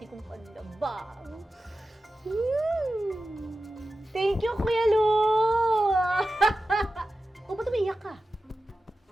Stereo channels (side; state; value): both; normal; correlation 0.93